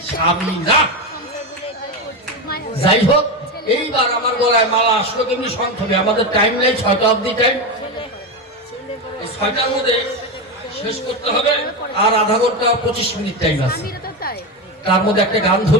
স্বামী না। যাই হোক, এইবার আমার গলায় মালা আসলো কেমনি সংক্ষেপে, আমাদের টাইম নেই, 6টা অবধি টাইম, 6টার মধ্যে শেষ করতে হবে, আর আধা ঘন্টা 25 মিনিট টাইম আছে। তার মধ্যে একটা গান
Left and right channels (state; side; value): normal; both; correlation 0.15